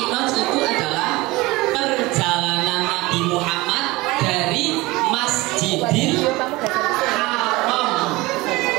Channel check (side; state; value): left; quieter; 21.2 dB